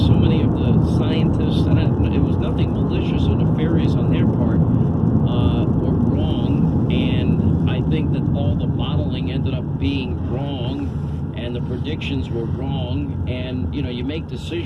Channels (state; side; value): identical; both; correlation 1.00